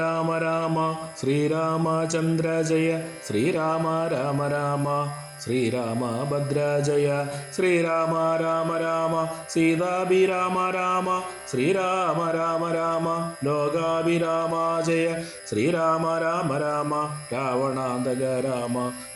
രാമ ശ്രീരാമചന്ദ്ര ജയ ശ്രീരാമ രാമ രാമ ശ്രീരാമഭദ്ര ജയ ശ്രീരാമ രാമ രാമ സീതാഭിരാമ രാമ ശ്രീരാമ രാമ രാമ ലോകാഭിരാമ ജയ ശ്രീരാമ രാമ രാമ രാവണാന്തക രാമ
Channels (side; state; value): both; identical; correlation 1.00